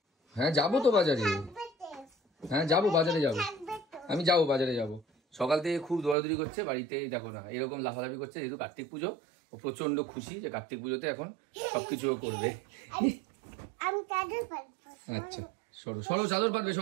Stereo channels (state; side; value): drops out; left; at 6.2 s